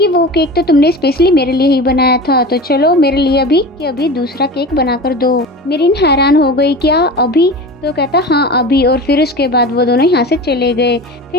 वो केक तो तुमने स्पेशली मेरे लिए ही बनाया था। तो चलो मेरे लिए अभी दूसरा केक बनाकर दो। मिरिन हैरान हो गई, क्या अभी? तो कहता हाँ अभी। और फिर उसके बाद वो दोनों यहाँ से चले गए।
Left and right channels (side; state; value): both; normal; correlation 0.32